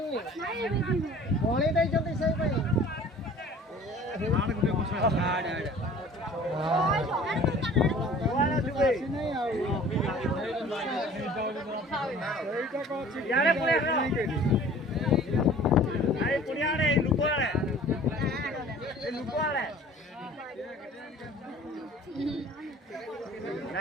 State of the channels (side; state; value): both; normal; correlation 0.47